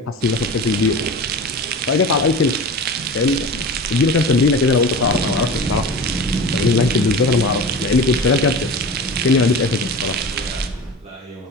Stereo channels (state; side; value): normal; both; correlation 0.32